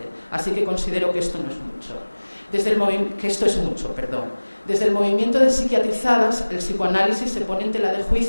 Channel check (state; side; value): inverted; both; correlation -1.00